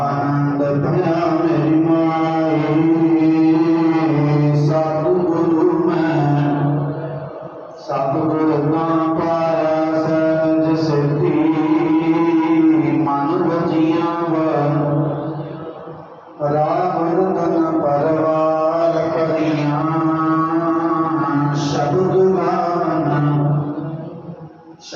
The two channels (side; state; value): both; identical; correlation 1.00